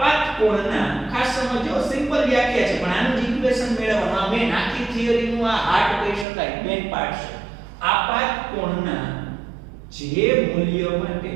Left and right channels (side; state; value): left; drops out; at 6.2 s